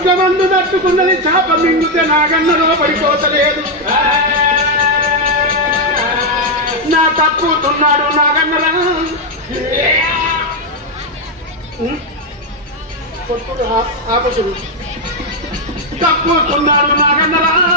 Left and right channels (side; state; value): both; normal; correlation 0.03